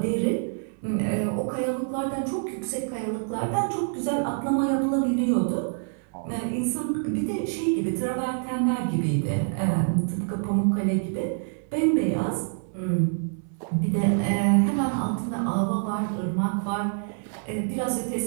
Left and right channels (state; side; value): silent; left; 61 dB below the other